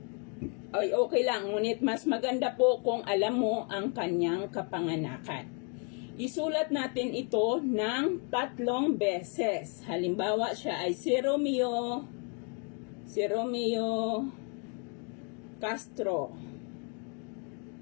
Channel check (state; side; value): quieter; right; 38.5 dB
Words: ay okay lang. Ngunit mas maganda po kung alam mo ang kanyang kapanganakan. Isulat natin ito ng 3 beses. Halimbawa, siya ay si Romeo Castro.